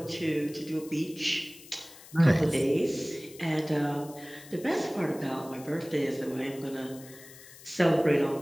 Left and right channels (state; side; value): noise; left; hiss, 19 dB below the sound